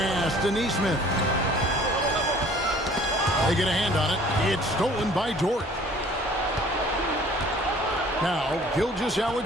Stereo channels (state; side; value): normal; both; correlation 0.53